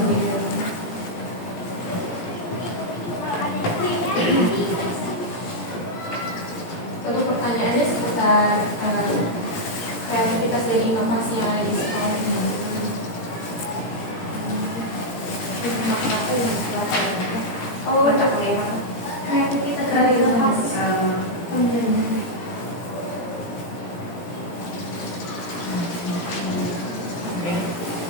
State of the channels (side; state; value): right; late; 17 ms